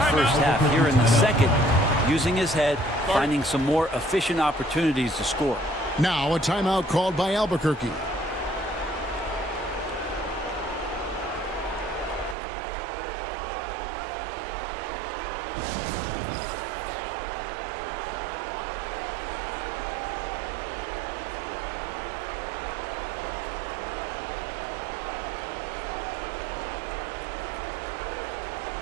first half. Here in the second, using his head, finding some more efficient opportunities to score. Now a timeout called by Albuquerque.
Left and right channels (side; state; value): left; drops out; at 12.4 s